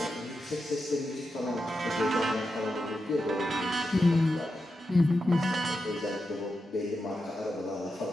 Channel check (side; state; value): both; normal; correlation 0.88